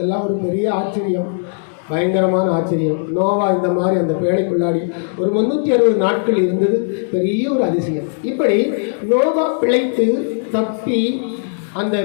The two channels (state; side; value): silent; right; digital silence